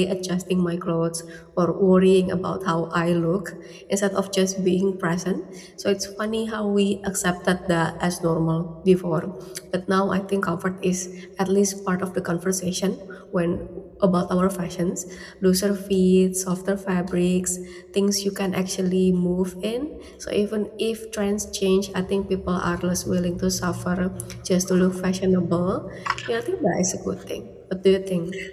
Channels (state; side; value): identical; both; correlation 1.00